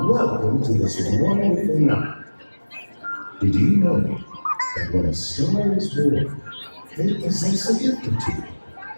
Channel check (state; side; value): inverted; both; correlation -1.00